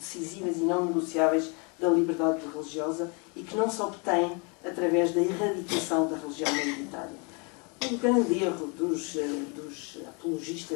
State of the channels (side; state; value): right; quieter; 32.9 dB